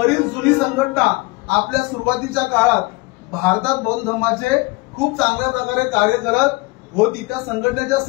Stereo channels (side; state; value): right; quieter; 24.3 dB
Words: जुनी संघटना आपल्या सुरुवातीच्या काळात भारतात बौद्ध धर्माचे खूप चांगल्या प्रकारे कार्य करत होती. त्या संघटनेच्या